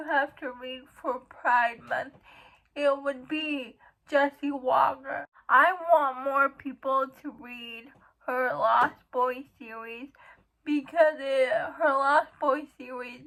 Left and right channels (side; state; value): both; identical; correlation 1.00